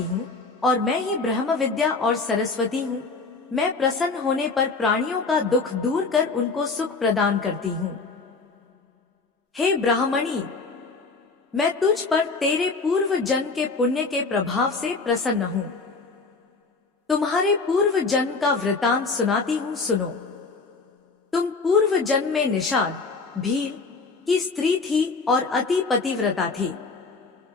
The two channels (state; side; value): quieter; right; 4.2 dB